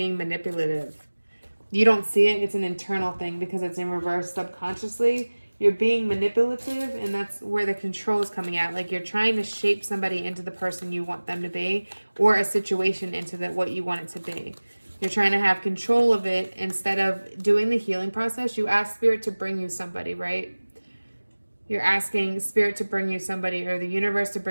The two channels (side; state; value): both; inverted; correlation -1.00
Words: manipulative. You don't see it. It's an internal thing because it's in reverse subconsciously. You're being manipulative, and that's where the control is coming out. Like you're trying to shape somebody into the person you want them to be, or a situation into what you want it to be. You're trying to have control of it instead of doing the healing process. You ask Spirit to bring you somebody, right? You're asking Spirit to bring you somebody, or the universe to